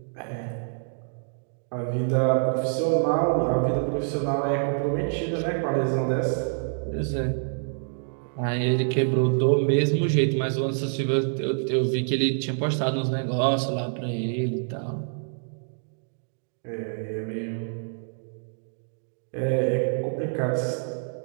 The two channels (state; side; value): silent; left; digital silence